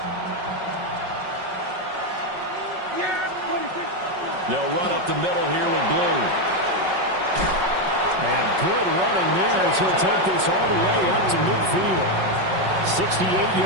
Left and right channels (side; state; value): left; late; 5.4 ms